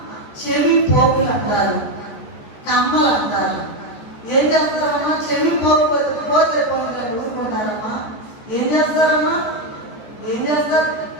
చెవి పోగులు అంటారు, కమ్మలు అంటారు. ఏం చేస్తారమ్మా? చెవి పోగు వెతుక్కోతే పోగులు ఊరుకుంటారమ్మా. ఏం చేస్తారమ్మా? ఏం చేస్తారు?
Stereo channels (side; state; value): right; late; 14 ms